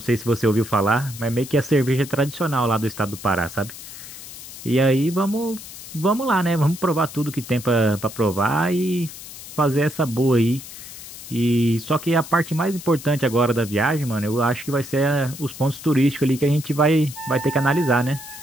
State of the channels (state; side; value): noise; left; hiss, 14 dB below the sound